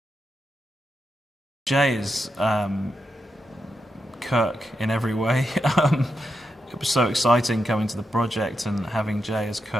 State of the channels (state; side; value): normal; both; correlation 0.86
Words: Jay is Kirk in every way. It was so exciting coming to the project and having Jay as